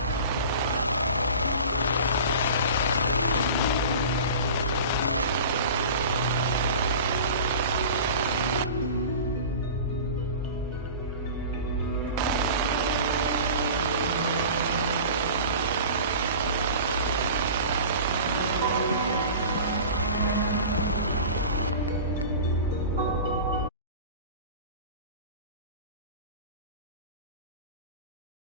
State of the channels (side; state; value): both; inverted; correlation -0.36